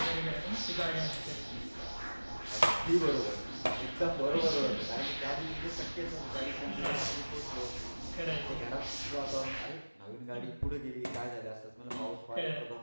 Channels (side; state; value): both; inverted; correlation -1.00